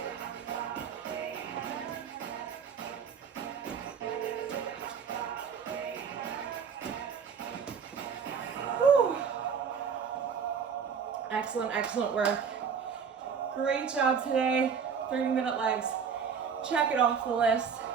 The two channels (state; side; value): quieter; left; 6.6 dB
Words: Excellent, excellent work. Great job today. 30-minute legs. Check it off the list.